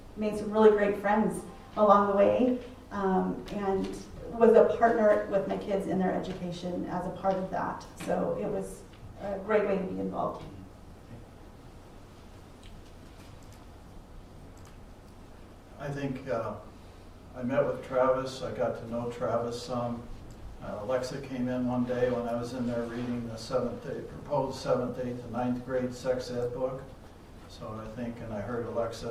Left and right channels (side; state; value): both; identical; correlation 1.00